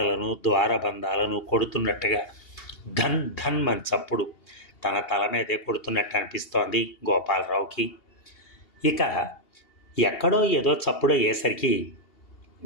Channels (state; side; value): late; right; 2.8 ms